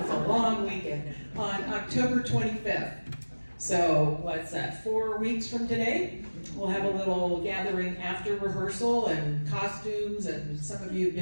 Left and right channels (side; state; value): both; inverted; correlation -1.00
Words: a long weekend. On October 25th. So what's that, 4 weeks from today? We'll have a little gathering after rehearsal and costumes, and some of you have